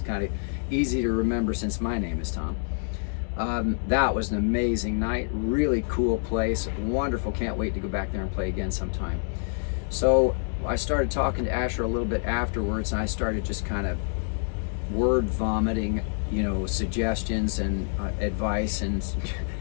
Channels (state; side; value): silent; right; digital silence